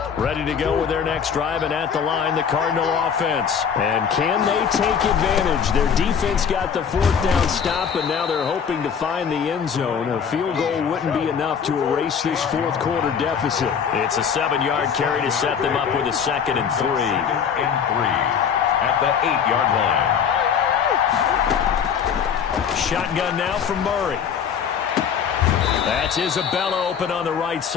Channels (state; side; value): quieter; right; 7.2 dB